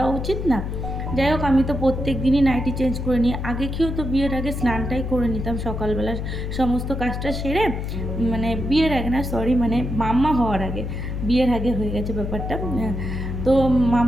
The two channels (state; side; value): noise; left; hum, 4 dB below the sound